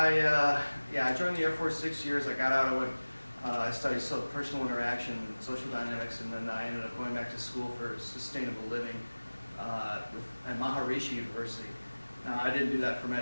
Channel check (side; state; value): both; inverted; correlation -1.00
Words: joined the Air Force 6 years. I got out, I studied personal interaction, social dynamics, and then I ended up going back to school for sustainable living at Maharishi University. Now, I didn't do that for